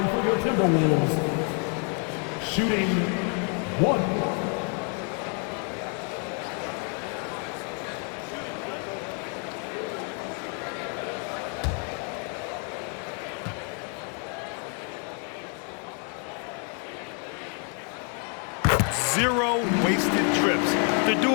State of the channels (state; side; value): quieter; right; 39.7 dB